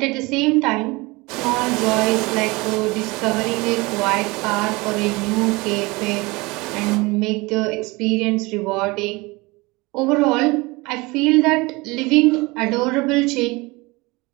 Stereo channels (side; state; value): left; quieter; 24.0 dB